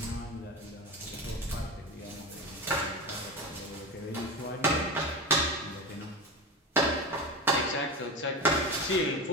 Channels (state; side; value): normal; both; correlation 0.25